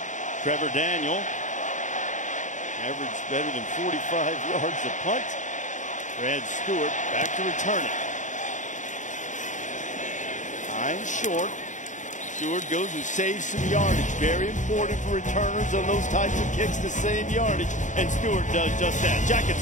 Trevor Daniel averaged better than 45 yards a punt. Brad Stewart back to return it. Time short. Stewart goes and saves some yardage. Very important for returners on those types of kicks to save yardage. And Stewart does just that. Jackets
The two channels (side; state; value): right; late; 0.36 ms